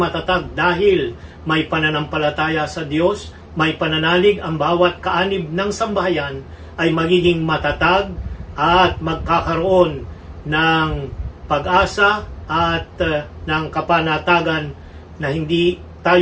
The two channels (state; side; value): identical; both; correlation 1.00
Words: dahil may pananampalataya sa Diyos, may pananalig ang bawat kaanib ng sambahayan, ay magiging matatag at magkakaroon ng pag-asa at ng kapanatagan na hindi